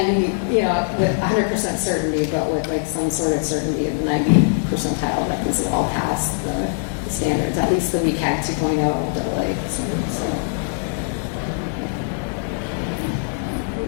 with 100% certainty, but with like some sort of certainty in the 90 percentile that these will all pass the standards, at least the WCAG 2.0 AA standards. So.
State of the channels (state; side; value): silent; right; 64 dB below the other